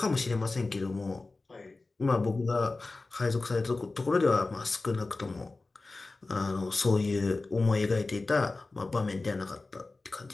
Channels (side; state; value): right; quieter; 3.4 dB